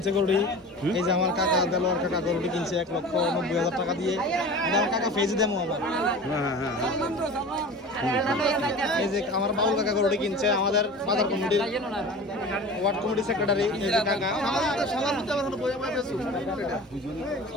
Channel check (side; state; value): both; normal; correlation 0.36